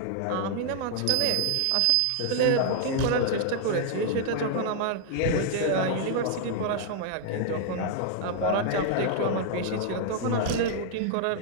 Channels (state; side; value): different; both; correlation 0.00